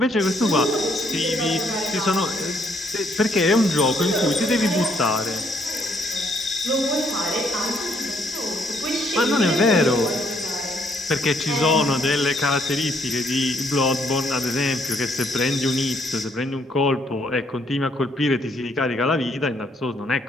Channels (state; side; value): normal; both; correlation 0.69